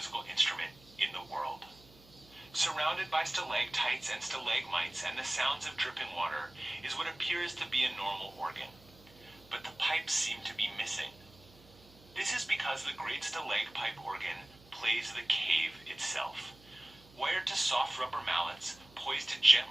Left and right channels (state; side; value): noise; right; hum, 24 dB below the sound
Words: instrument in the world. Surrounded by stalactites and stalagmites and the sounds of dripping water is what appears to be a normal organ. But the pipes seem to be missing. This is because the Great Stalagpipe Organ plays the cave itself. Wired to soft rubber mallets, poised to